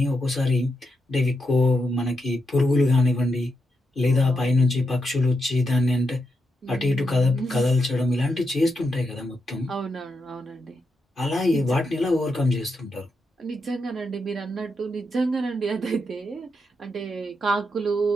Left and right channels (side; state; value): both; normal; correlation 0.84